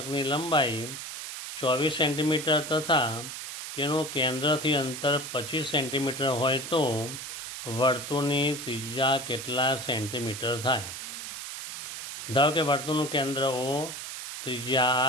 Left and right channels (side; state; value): right; noise; hiss, 8 dB below the sound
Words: લંબાઈ 24 સેન્ટીમીટર તથા તેનું કેન્દ્રથી અંતર 25 સેન્ટીમીટર હોય તો વર્તુળની ત્રિજ્યા કેટલા સેન્ટીમીટર થાય? ધારો કે વર્તુળનું કેન્દ્ર O,